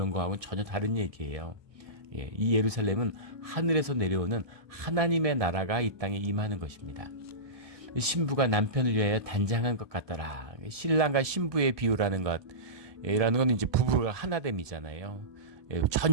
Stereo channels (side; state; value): left; late; 1.6 ms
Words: 거하고는 전혀 다른 얘기예요. 이 예루살렘은 하늘에서 내려오는 하나님의 나라가 이 땅에 임하는 것입니다. 신부가 남편을 위하여 단장한 것 같더라. 신랑과 신부의 비유라는 것이라는 건 이제 부부가 하나됨이잖아요.